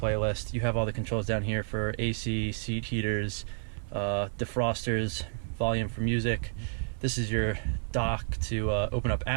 You have all the controls down here for AC, seat heaters, defrosters, volume for music. This is your dock to open up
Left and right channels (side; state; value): left; silent; 58 dB below the other